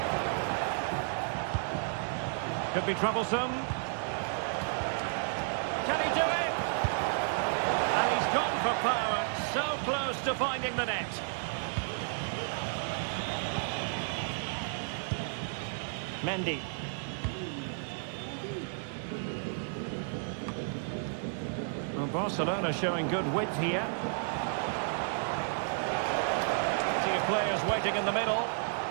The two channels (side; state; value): left; silent; digital silence